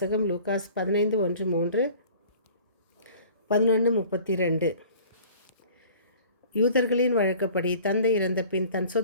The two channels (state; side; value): inverted; both; correlation -0.47